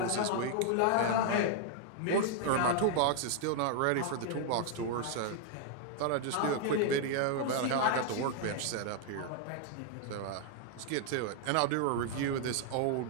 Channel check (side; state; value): both; different; correlation 0.00